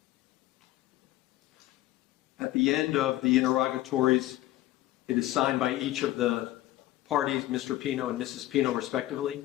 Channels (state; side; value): quieter; right; 15.6 dB